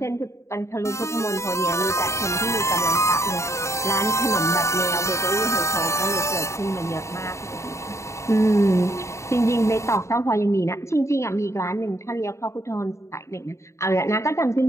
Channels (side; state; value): right; late; 0.14 ms